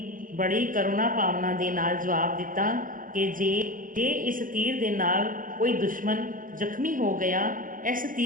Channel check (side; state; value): left; late; 0.40 ms